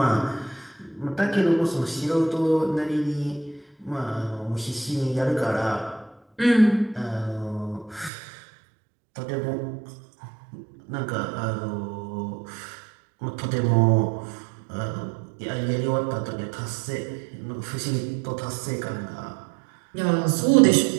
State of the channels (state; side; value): drops out; left; at 8.1 s